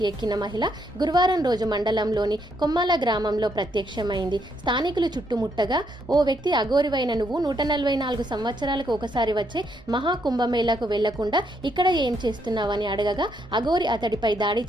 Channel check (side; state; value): both; normal; correlation 0.75